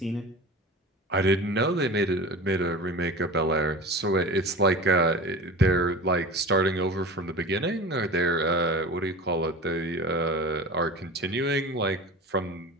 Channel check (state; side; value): normal; both; correlation 0.34